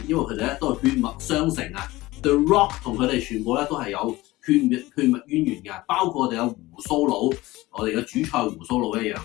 因為佢哋咧都係血脈相承啊。The Rock 同佢哋全部咧都係有血脈淵源嘅，包括我哋有胡鬚佬，我哋嘅主菜胡鬚佬一樣，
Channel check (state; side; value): quieter; right; 19.1 dB